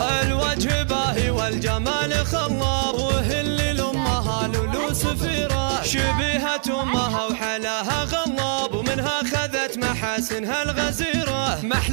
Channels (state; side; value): silent; left; digital silence